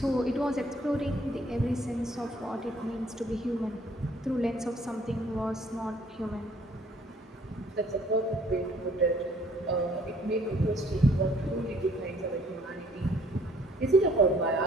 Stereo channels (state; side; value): normal; both; correlation 0.60